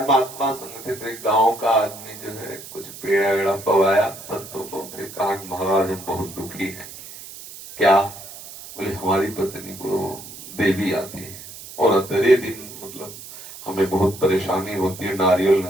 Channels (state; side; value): noise; right; hiss, 14 dB below the sound